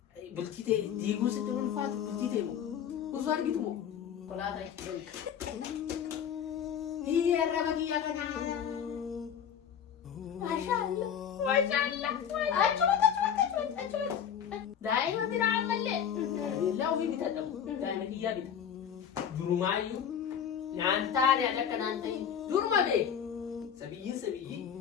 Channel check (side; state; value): right; quieter; 8.5 dB